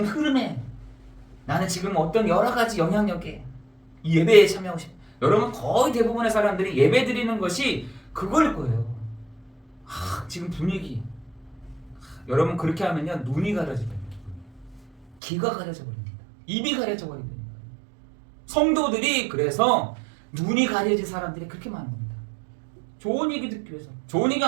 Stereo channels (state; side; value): drops out; left; at 15.2 s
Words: 흐름에, 나는 지금 어떤 여러 가지 영향력에 이 예배에 참여하고 싶어. 여러분, 거의 대부분의 사람들이 예배 드리는 것이 그걸 거예요. 지금 분위기. 여러분, 그렇게 하면요 눈이 가려져 버립니다. 귀가 가려져 버립니다. 입이 가려져 버립니다. 성도들이 그래서 눈이 가려진 사람들이 그렇게 많은 겁니다. 좋은 얘기 듣기 위해서. 좋은 얘기